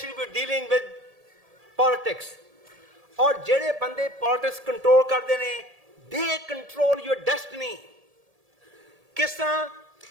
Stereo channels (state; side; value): late; left; 1.7 ms